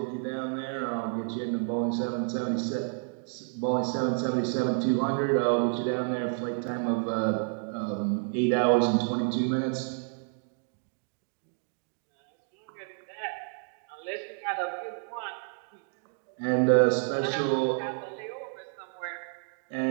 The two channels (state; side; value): silent; left; 58 dB below the other